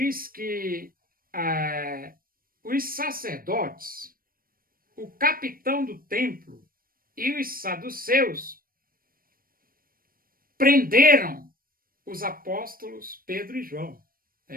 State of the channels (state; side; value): late; left; 0.42 ms